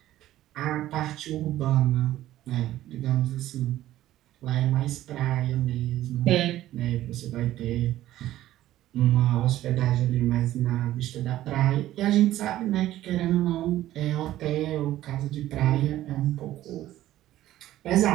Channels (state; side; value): quieter; left; 14.2 dB